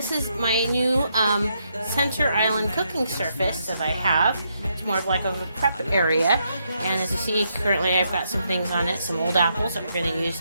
is my new center island cooking surface that I have. It's more of like a prep area, and as you see, currently I've got some things on it, some old apples that we're going to use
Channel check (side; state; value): both; inverted; correlation -0.78